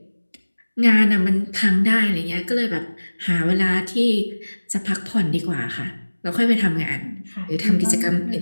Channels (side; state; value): both; inverted; correlation -1.00